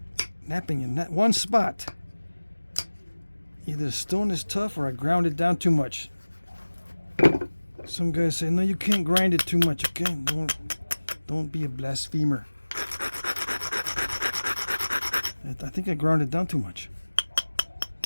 napping in that one spot. Either the stone is tough or I ground it down too much. Some guys say, no, you can't grind it too much, okay? Don't be a blasphemer. I think I ground it down too much.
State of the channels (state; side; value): inverted; both; correlation -1.00